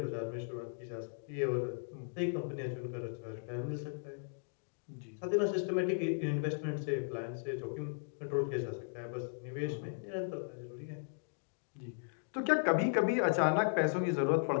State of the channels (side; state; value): right; silent; digital silence